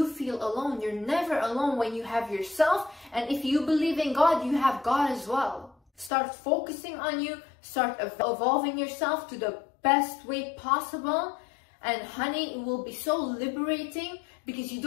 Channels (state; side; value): drops out; right; at 6.1 s